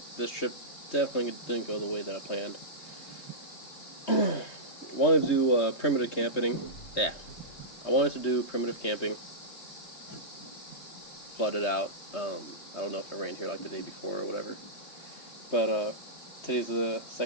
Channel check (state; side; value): late; right; 3.2 ms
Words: this trip definitely didn't go the way that I planned. Wanted to do primitive camping. Yeah, I wanted to do primitive camping. Flooded out. I don't know if it rained here like the day before or whatever, but today's the